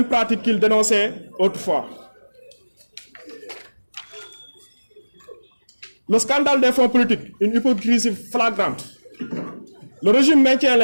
pratiques qu'il dénonçait autrefois. Le scandale des fonds politiques, une hypocrisie flagrante. Le régime maintient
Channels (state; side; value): inverted; both; correlation -1.00